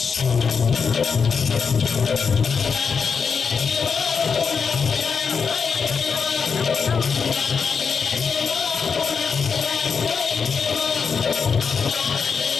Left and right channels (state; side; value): quieter; right; 5.8 dB